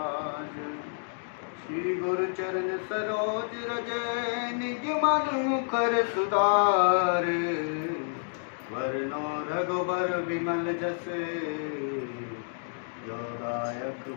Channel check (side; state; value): right; silent; digital silence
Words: श्री गुरु चरण सरोज रज निज मन मुखर सुधार। वरनो रघुबर विमल जस जो दायक